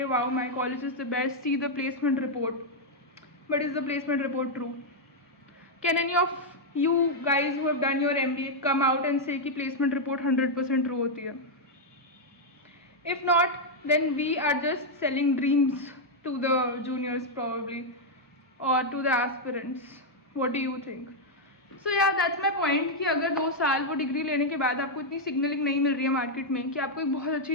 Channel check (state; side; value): normal; both; correlation -0.02